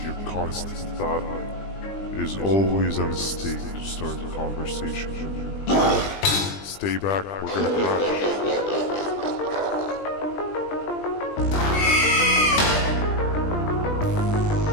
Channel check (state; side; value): late; right; 20 ms